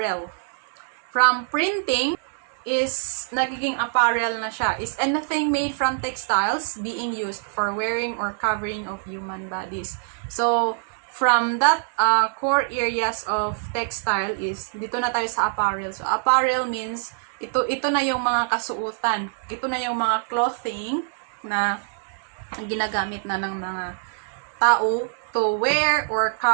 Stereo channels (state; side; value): silent; left; digital silence